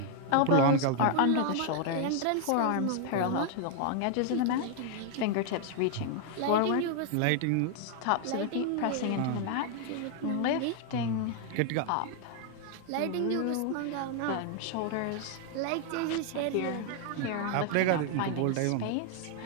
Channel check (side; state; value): both; different; correlation 0.00